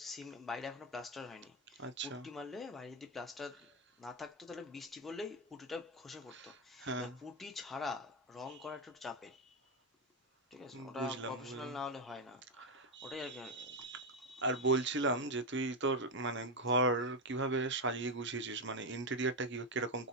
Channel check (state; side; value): normal; both; correlation 0.07